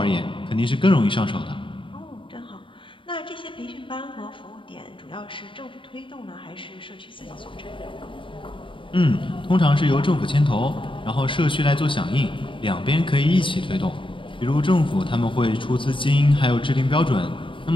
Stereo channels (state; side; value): late; right; 0.25 ms